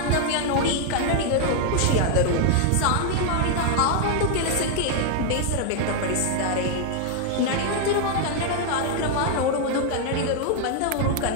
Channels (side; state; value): both; different; correlation 0.00